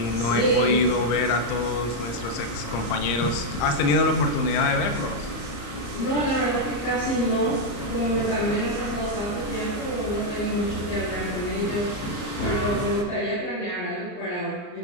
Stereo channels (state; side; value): late; right; 34 ms